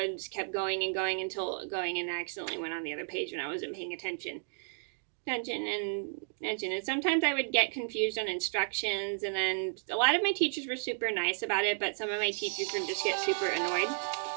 going and I accidentally went on the other page when I wasn't paying attention. And sometimes I would get confused on instructions, and then a lot of my teachers were super nice about it, but some of my teachers would just get super annoyed.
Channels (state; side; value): silent; left; digital silence